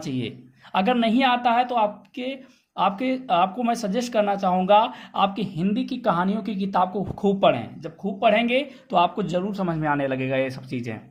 चाहिए। अगर नहीं आता है तो आपको मैं सजेस्ट करना चाहूँगा, आपकी हिंदी की कहानियों की किताब को खूब पढ़ें। जब खूब पढ़ेंगे तो आपको जरूर समझ में आने लगेगा ये सब चीज़ें।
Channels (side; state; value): both; identical; correlation 1.00